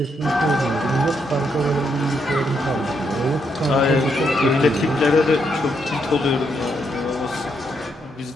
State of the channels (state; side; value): normal; both; correlation 0.77